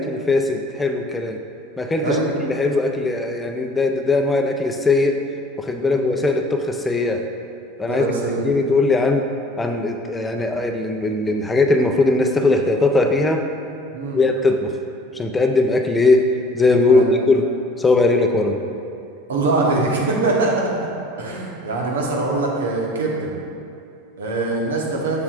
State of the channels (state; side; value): normal; both; correlation 0.52